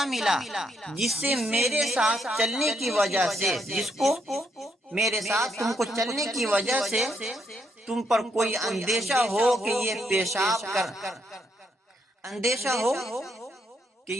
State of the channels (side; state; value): both; normal; correlation 0.76